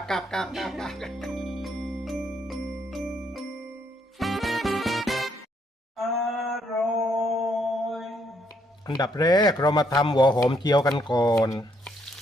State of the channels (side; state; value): both; normal; correlation 0.72